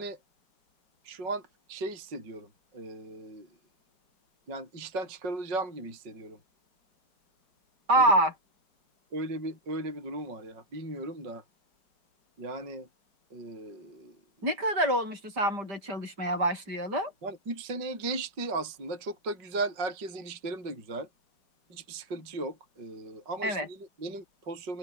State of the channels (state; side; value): late; left; 5.4 ms